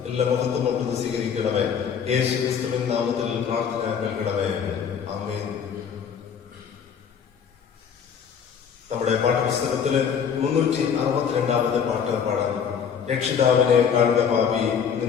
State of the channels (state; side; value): quieter; right; 7.3 dB